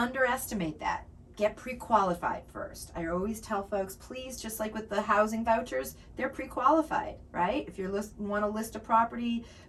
that. Get pre-qualified first. I always tell folks, please, just like with the housing vouchers, they're pre-qualified, right? If you want to list a property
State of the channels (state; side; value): identical; both; correlation 1.00